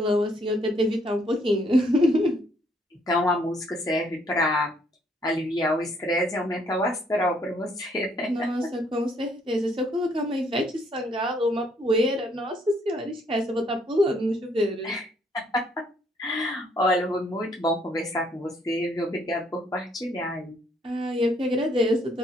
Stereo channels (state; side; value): normal; both; correlation 0.68